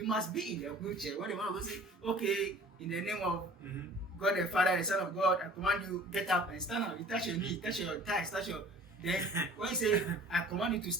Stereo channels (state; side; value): normal; both; correlation 0.47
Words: be in the wheelchair. When the man of God says, okay, in the name of God the Father, the Son of God, I command you, get up and stand up. You touch your knee, touch your thighs, touch your... Then when you say, I command you to